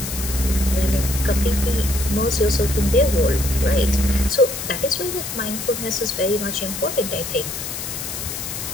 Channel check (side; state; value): left; noise; hiss, 6 dB below the sound